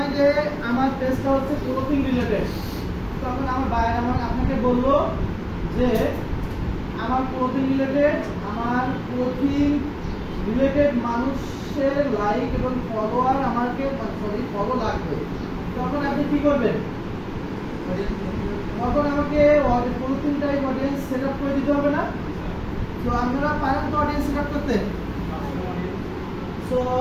যে আমার পেজটা হচ্ছে ক্লোথিং রিলেটেড, তখন আমার বাইরে আপনাকে বললো যে আমার ক্লোথিং রিলেটেড মানুষের লাইক এবং ফলোয়ার আমাকে ফলো লাগবে, তখন আপনি কি করবেন, তখন আমাকে clothing type audience set up করে দিতে হবে না? তো আপনারা পারেন তো অডিয়েন্স সেট আপ করতে? তো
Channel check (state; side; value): identical; both; correlation 1.00